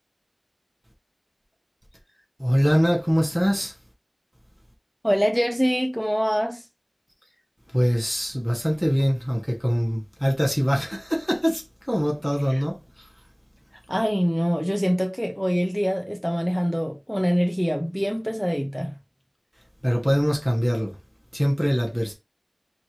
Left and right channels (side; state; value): both; identical; correlation 1.00